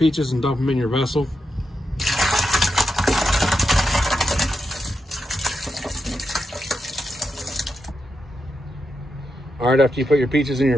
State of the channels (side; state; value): both; normal; correlation 0.85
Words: and dump them in your vessel. All right, after you put your peaches in